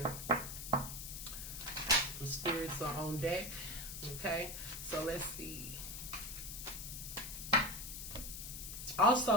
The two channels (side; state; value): left; noise; hiss, 8 dB below the sound